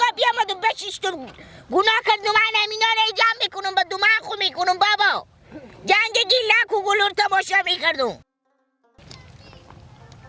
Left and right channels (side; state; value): both; identical; correlation 1.00